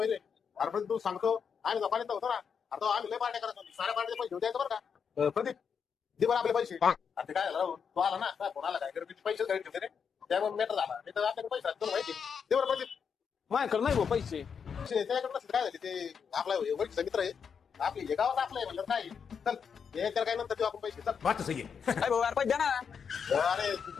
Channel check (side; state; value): right; quieter; 6.6 dB